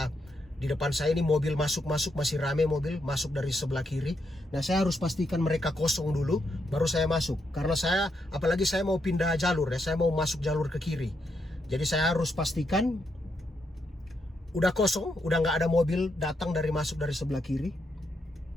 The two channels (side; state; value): both; normal; correlation 0.80